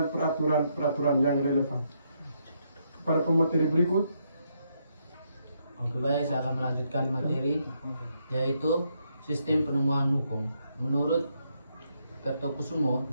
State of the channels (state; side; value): inverted; both; correlation -0.77